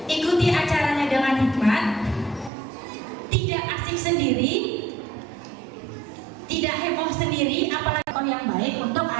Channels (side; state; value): left; drops out; at 2.5 s